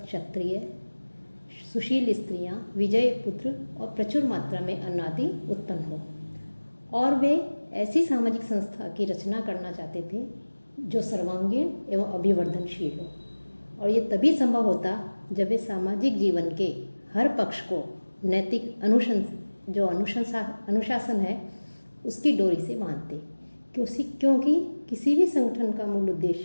क्षत्रिय, सुशील स्त्रियां, विजयी पुत्र और प्रचुर मात्रा में अन्न आदि उत्पन्न हो। और वे ऐसी सामाजिक संस्था की रचना करना चाहते थे जो सर्वांगीण एवं अभिवर्धनशील हो। और ये तभी संभव होता जब वे सामाजिक जीवन के हर पक्ष को नैतिक अनुशासन है उसकी डोरी से बांधते। क्योंकि किसी भी संगठन का मूल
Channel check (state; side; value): inverted; both; correlation -1.00